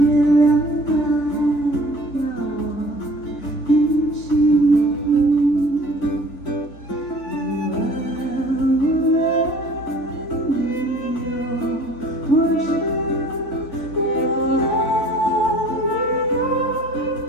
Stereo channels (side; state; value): right; late; 4.1 ms